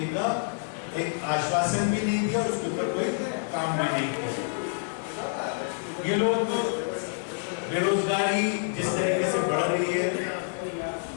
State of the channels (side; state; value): right; silent; 59 dB below the other